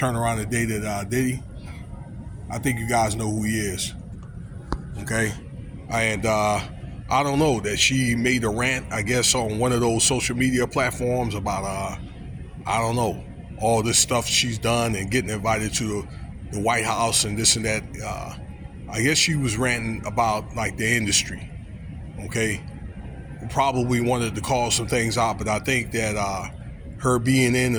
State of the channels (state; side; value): identical; both; correlation 1.00